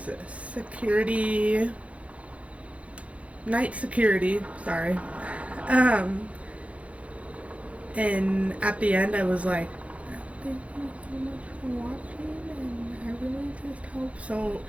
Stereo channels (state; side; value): late; left; 0.064 ms